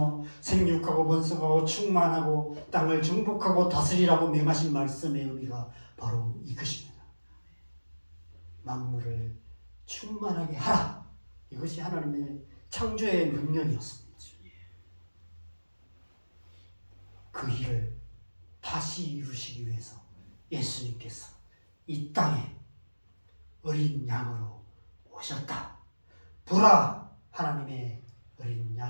생육하고 번성하고 충만하고 땅을 정복하고 다스리라고 명하신 말씀의 의미가 바로 이것입니다. 만물을 충만하게 하라. 이것이 하나님의 창조의 명령이었습니다. 그 일을 다시 이루시기 위해서 예수님께서 이 땅에 어린 양으로 오셨다. 보라, 하나님의 어린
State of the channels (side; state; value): both; inverted; correlation -1.00